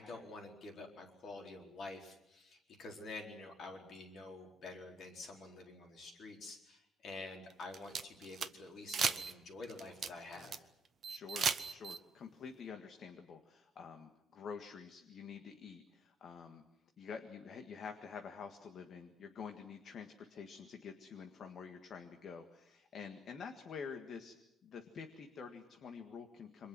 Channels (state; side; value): normal; both; correlation 0.69